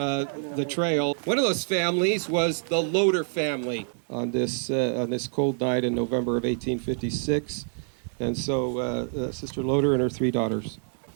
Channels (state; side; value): silent; left; digital silence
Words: trail. One of those families was the Loader family on this cold night in November of 1856. And so Sister Loader and her 3 daughters.